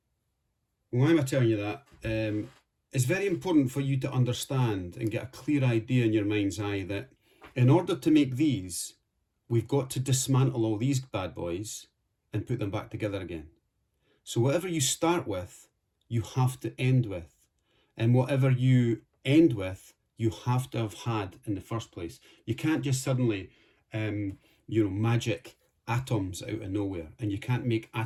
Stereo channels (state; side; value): identical; both; correlation 1.00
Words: Why am I telling you that? It's very important for you to understand and get a clear idea in your mind's eye that in order to make these, we've got to dismantle all these bad boys and put them back together again. So whatever you start with, you have to end with. And whatever you end with, you have to have had in the first place. You can't just suddenly, magic atoms out of nowhere, and you can't make